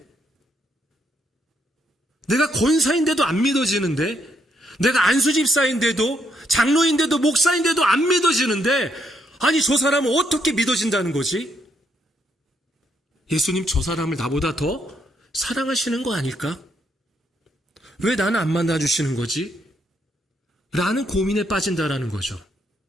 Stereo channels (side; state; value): both; normal; correlation 0.75